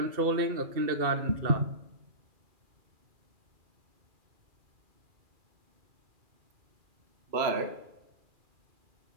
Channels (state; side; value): late; left; 2.4 ms